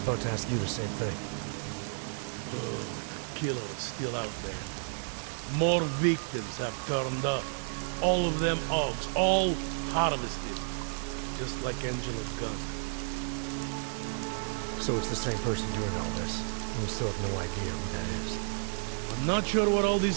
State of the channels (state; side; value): silent; left; 57 dB below the other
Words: to ask you the same thing. Oh, the killer is still out there. More victims have turned up. All of them Augs, all harvested. Just like Angela's gun. So it's the same person doing all this, and we still have no idea who that is. I'm not sure where all